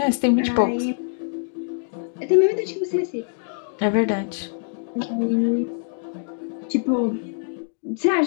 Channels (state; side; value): silent; right; digital silence